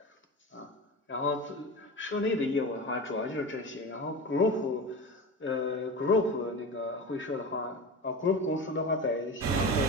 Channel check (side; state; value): both; normal; correlation 0.28